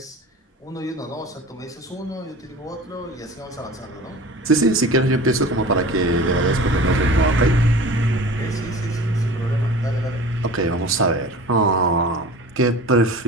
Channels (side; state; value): both; normal; correlation 0.38